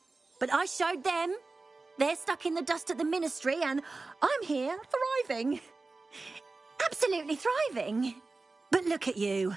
But I showed them. They're stuck in the dust at the ministry and I'm here thriving. Absolutely thriving. But look at you.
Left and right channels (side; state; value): left; quieter; 3.6 dB